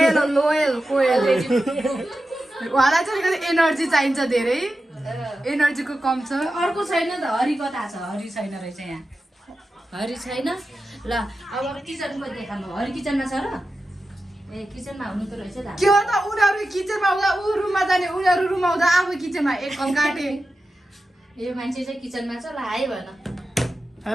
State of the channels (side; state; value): both; normal; correlation 0.92